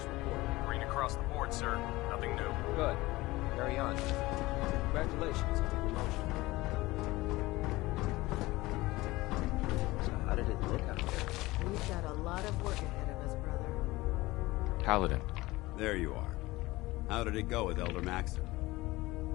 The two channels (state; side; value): quieter; right; 19.8 dB